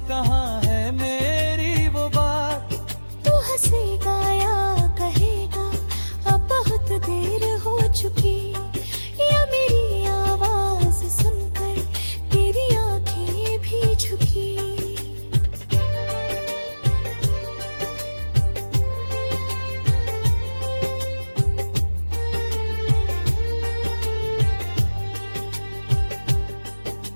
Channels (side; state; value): both; inverted; correlation -1.00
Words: कहाँ है मेरी वो बात। तू हंसेगा या कहेगा अब बहुत देर हो चुकी, या मेरी आवाज सुनकर तेरी आंखें भी झुकी।